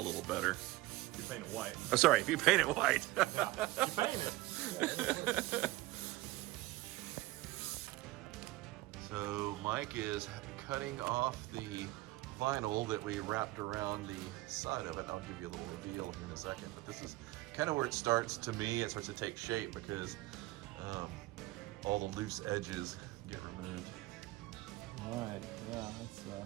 better. You paint it white. Oh, sorry, if you paint it white. Yeah, you paint it. So Mike is cutting off the vinyl that we wrapped around the side of it. I'll give you a little reveal here in a second, but this is kind of where it starts, to me, it starts to take shape because all the loose edges get removed. All right, yeah, it's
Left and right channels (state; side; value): quieter; left; 18.8 dB